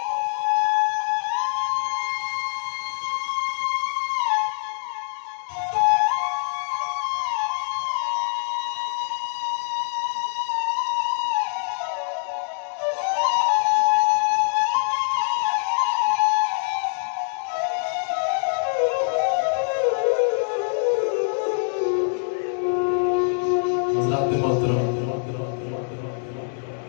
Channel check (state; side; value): silent; right; digital silence